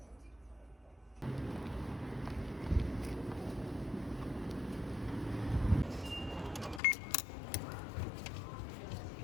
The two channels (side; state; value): right; drops out; at 6.8 s